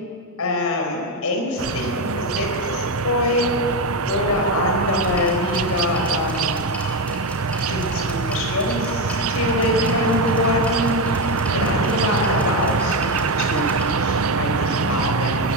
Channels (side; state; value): both; normal; correlation 0.10